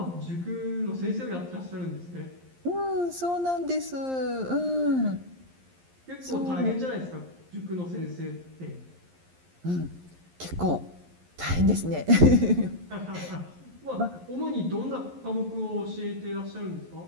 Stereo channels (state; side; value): late; left; 11 ms